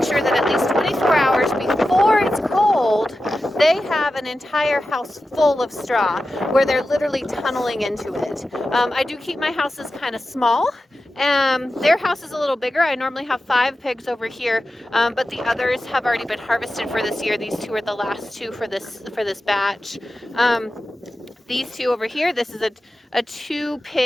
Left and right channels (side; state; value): both; normal; correlation 0.93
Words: sure that at least 24 hours before it's cold, they have an entire house full of straw where they're literally tunneling into it. I do keep my houses kind of small. Their house is a little bigger. I normally have 5 pigs over here, but the others have already been harvested for this year. These 2 are the last 2 for this batch. These 2 over here, this is a